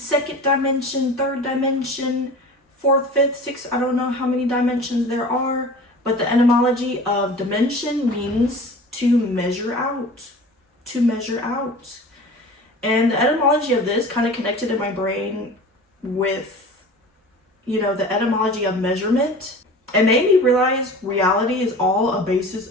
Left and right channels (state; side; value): normal; both; correlation 0.39